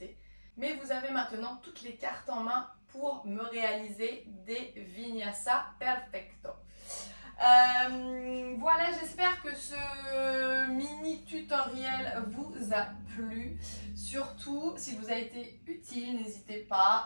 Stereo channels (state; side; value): inverted; both; correlation -1.00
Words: Mais vous avez maintenant toutes les cartes en main pour me réaliser des Vinyasa Perfecto. Voilà, j'espère que ce mini tutoriel vous a plu. Surtout, si vous a été utile, n'hésitez